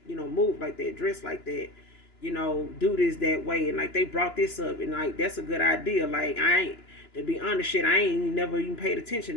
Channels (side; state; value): right; late; 2.9 ms